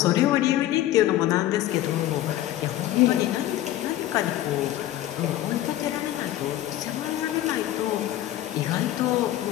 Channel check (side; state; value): right; quieter; 13.8 dB